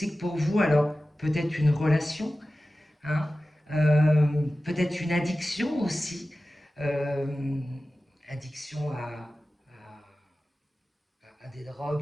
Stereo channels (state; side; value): normal; both; correlation 0.95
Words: pour vous. Alors, peut-être une relation, hein, peut-être une addiction aussi, addiction à des